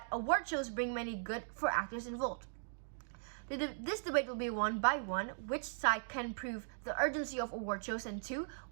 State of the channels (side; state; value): left; silent; digital silence